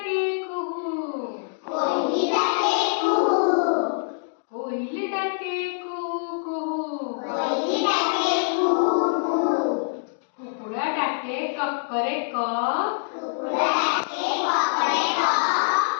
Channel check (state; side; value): silent; right; digital silence